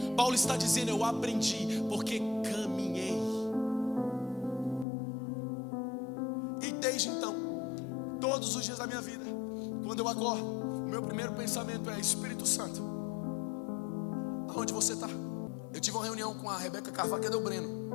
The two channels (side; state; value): right; drops out; at 4.9 s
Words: Paulo está dizendo: eu aprendi porque caminhei. E desde então, todos os dias da minha vida, quando eu acordo, o meu primeiro pensamento é: Espírito Santo, aonde você está? Eu tive uma reunião com a Rebeca Carvalho, cadê o Breno?